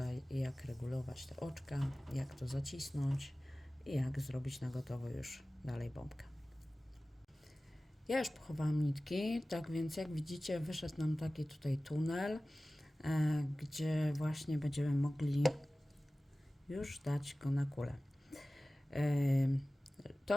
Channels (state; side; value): normal; both; correlation 0.97